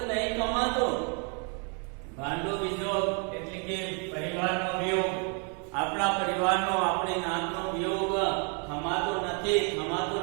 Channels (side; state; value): left; quieter; 37.3 dB